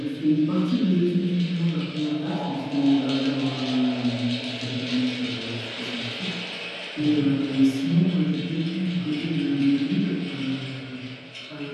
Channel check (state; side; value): identical; both; correlation 1.00